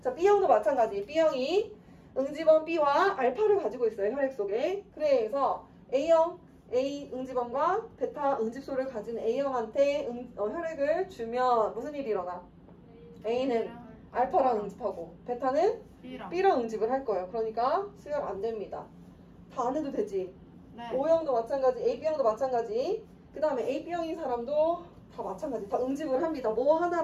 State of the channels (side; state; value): both; identical; correlation 1.00